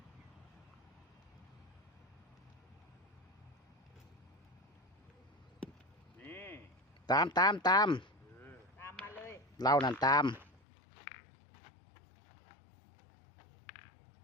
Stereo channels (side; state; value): right; drops out; at 10.6 s